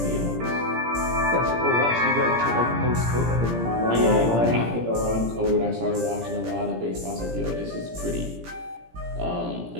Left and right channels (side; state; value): left; late; 17 ms